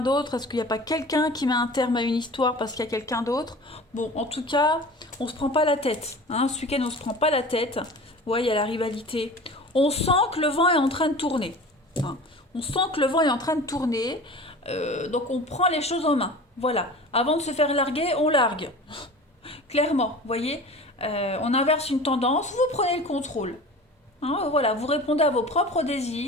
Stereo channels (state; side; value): normal; both; correlation 0.38